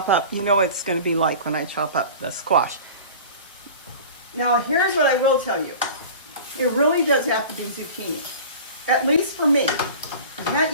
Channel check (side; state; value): both; inverted; correlation -0.39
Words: up. You know what it's going to be like when I chop up the squash. Now, here's what I will tell you. It really does have to be zucchini. At least for me. You can't